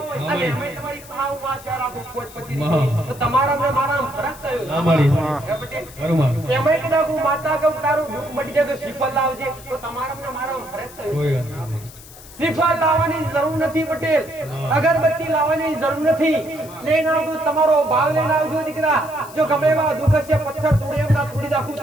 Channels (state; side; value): noise; left; hiss, 19 dB below the sound